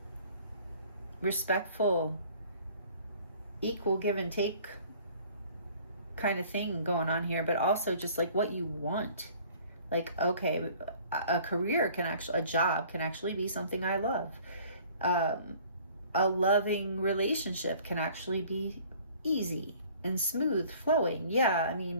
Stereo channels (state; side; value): inverted; both; correlation -0.52